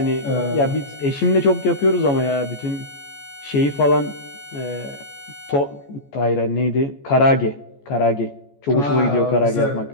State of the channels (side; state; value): right; late; 14 ms